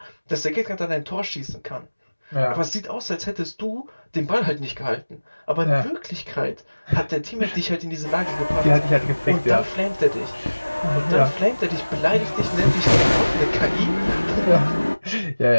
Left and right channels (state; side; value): inverted; both; correlation -1.00